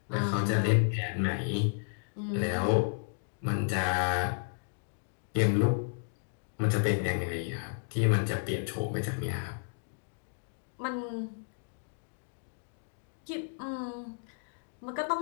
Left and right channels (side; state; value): right; silent; digital silence